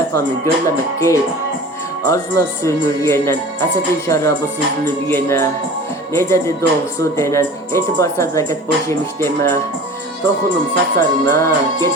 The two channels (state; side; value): normal; both; correlation 0.40